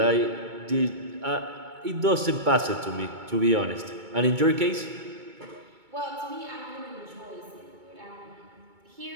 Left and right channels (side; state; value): left; late; 2.2 ms